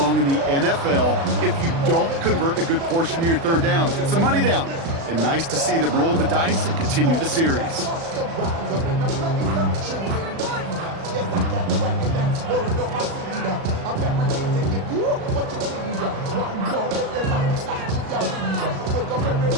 in the NFL if you don't convert a good portion of your third downs. It's the money down. And nice to see them roll the dice and continue the series.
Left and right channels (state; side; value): late; left; 36 ms